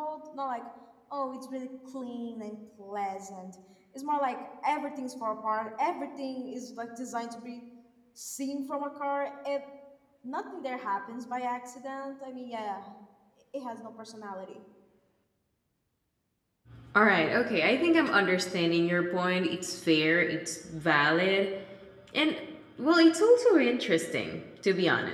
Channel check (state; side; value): identical; both; correlation 1.00